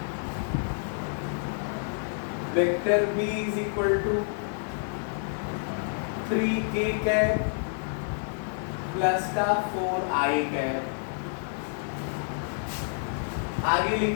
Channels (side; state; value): right; silent; digital silence